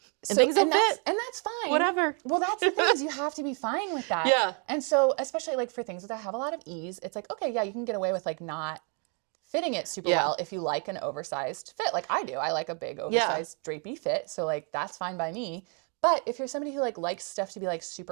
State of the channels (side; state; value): left; quieter; 37.4 dB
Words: And things don't fit. And that's fine. Whatever. Well, that's the thing is you have to be fine with that. Yeah. And so especially like for things that have a lot of ease, it's like, okay, yeah, you can get away with like not fitting it super well if you like an oversized fit, like I do. I like a big oversized drapey fit, so like that's fine by me. But if you're somebody who like likes stuff to be like